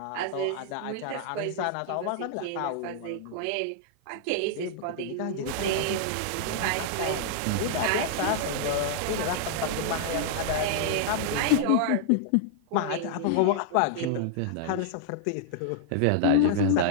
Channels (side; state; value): both; different; correlation -0.01